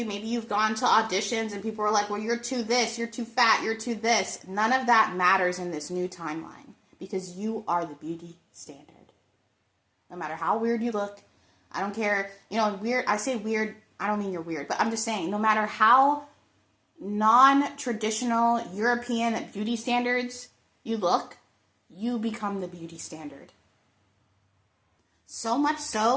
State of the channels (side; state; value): both; identical; correlation 1.00